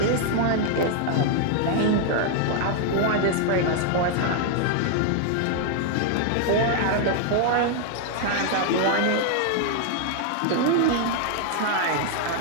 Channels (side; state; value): both; different; correlation 0.00